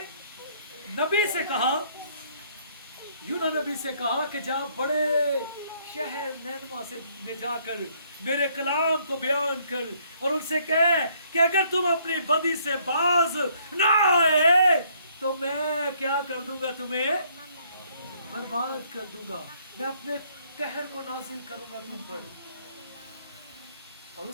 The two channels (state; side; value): inverted; both; correlation -0.66